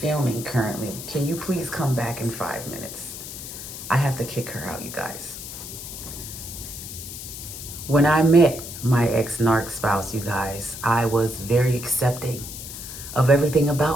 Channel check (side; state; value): left; noise; hiss, 10 dB below the sound